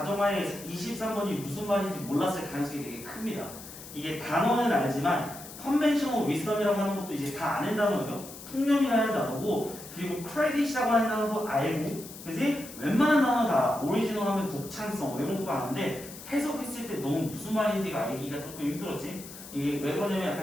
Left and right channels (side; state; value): left; noise; hiss, 14 dB below the sound